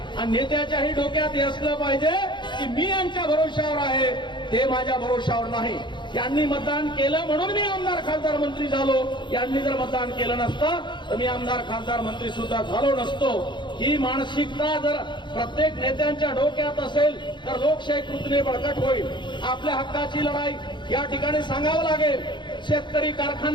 आणि नेत्याच्याही डोक्यात हे असलं पाहिजे की मी यांच्या भरोशावर आहे, ते माझ्या भरोशावर नाही. यांनी मतदान केलं म्हणून मी आमदार, खासदार, मंत्री झालो. यांनी जर मतदान केलं नसतं तर मी आमदार, खासदार, मंत्री सुद्धा झालो नसतो. ही मानसिकता जर प्रत्येक नेत्यांच्या डोक्यात असेल तर लोकशाही कृतीने बळकट होईल. आपल्या हक्काची लढाई या ठिकाणी सांगावं लागेल. शेतकरी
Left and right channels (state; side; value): late; right; 0.23 ms